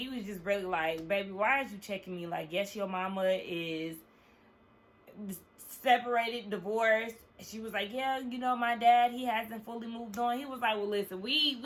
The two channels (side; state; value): both; identical; correlation 1.00